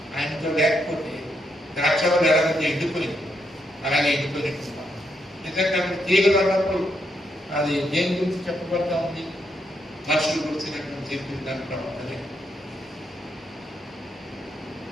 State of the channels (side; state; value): both; normal; correlation 0.79